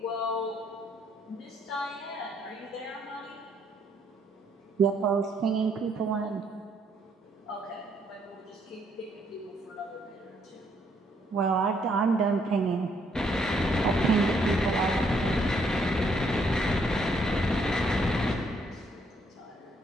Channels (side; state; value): both; normal; correlation 0.70